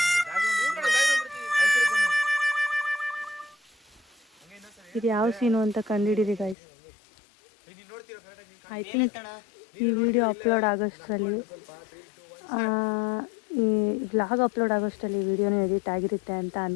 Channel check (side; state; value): right; drops out; at 6.6 s